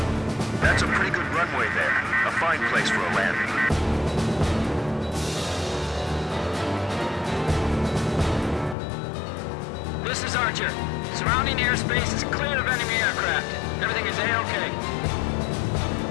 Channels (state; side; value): drops out; right; at 8.8 s